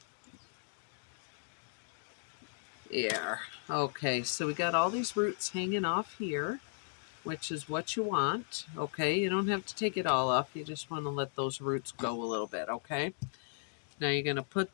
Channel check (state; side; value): silent; right; digital silence